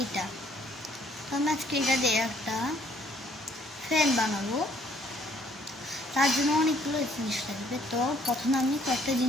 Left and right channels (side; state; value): both; normal; correlation 0.63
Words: এটা তো আমি আজকে এটা দিয়ে একটা ফ্যান বানাবো। তার জন্য অনেকগুলো জিনিস লাগবে। তো প্রথমে আমি কয়েকটা